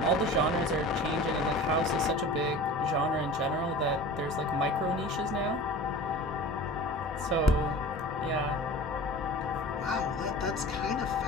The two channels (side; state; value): both; normal; correlation 0.38